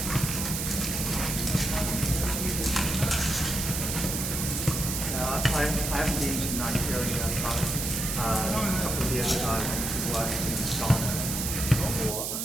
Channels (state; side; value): noise; right; hiss, 2 dB below the sound